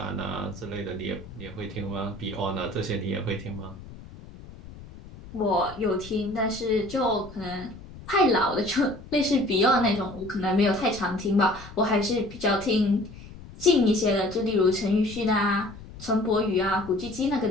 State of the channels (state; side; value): noise; left; rumble, 16 dB below the sound